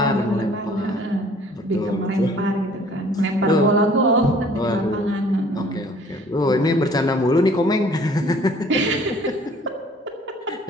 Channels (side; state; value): both; normal; correlation 0.54